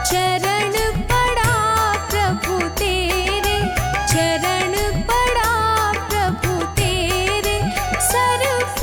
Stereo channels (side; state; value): both; identical; correlation 1.00